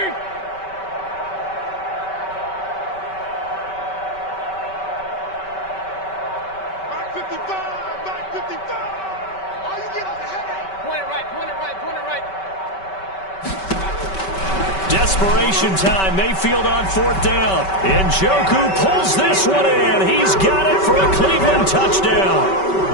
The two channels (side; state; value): right; late; 5.2 ms